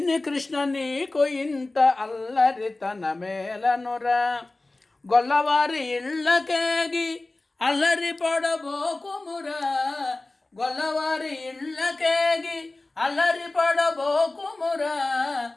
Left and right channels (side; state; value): right; quieter; 3.0 dB